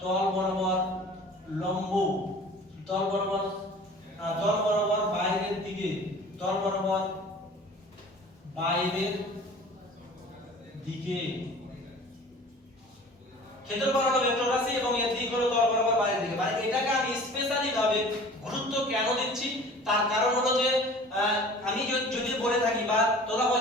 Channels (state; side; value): normal; both; correlation 0.44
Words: লম্ব, তল বরাবর বাইরের দিকে, ক্ষেত্রফল হলো ভেক্টর রাশি এবং এর দিক হলো তল বরাবর বাইরের দিকে। মানে এটাকে আমি স্পেশালি ভাবে গুরুত্ব কেন দিচ্ছি, তার কারণ হলো যে আমি যদি বলে থাকি বা তোরা